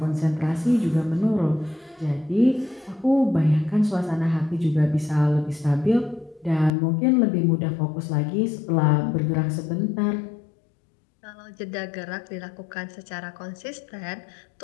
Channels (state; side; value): drops out; right; at 6.7 s